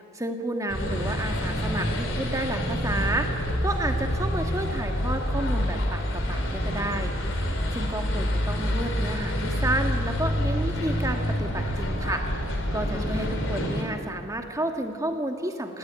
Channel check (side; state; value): both; normal; correlation 0.71